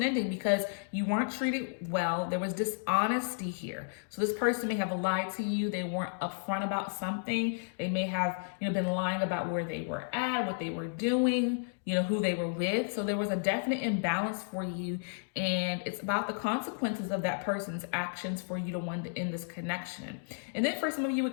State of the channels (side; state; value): right; silent; digital silence